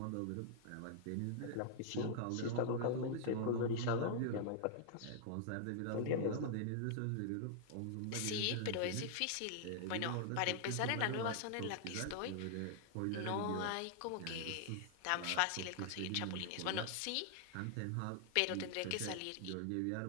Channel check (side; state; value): both; different; correlation -0.01